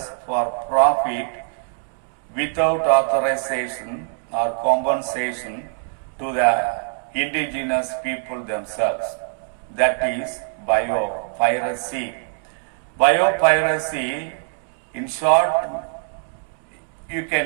for profit without authorization or compensation to the indigenous people themselves. That is biopiracy. Biopiracy, in short, you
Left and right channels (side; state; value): left; silent; digital silence